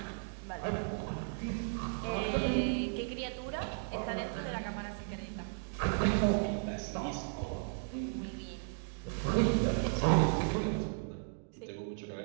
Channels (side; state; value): left; silent; digital silence